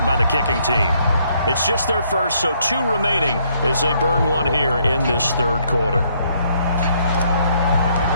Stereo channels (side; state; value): both; inverted; correlation -0.69